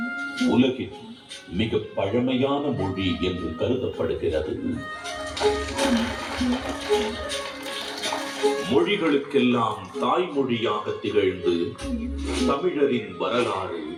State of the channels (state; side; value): identical; both; correlation 1.00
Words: உலகின் மிக பழமையான மொழி என்று கருதப்படுகிறது. மொழிகளுக்கெல்லாம் தாய்மொழியாக திகழ்ந்து தமிழரின் வரலாறு,